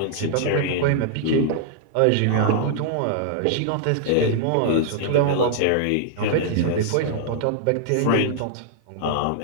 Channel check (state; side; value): different; both; correlation -0.01